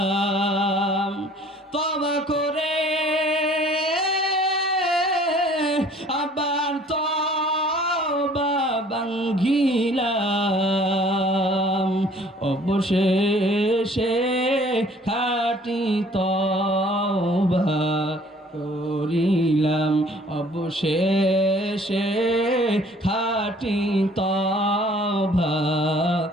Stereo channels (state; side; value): normal; both; correlation 0.54